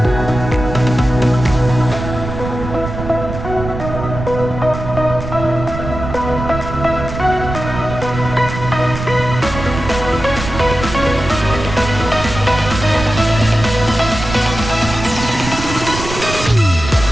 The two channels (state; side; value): noise; right; rumble, 7 dB below the sound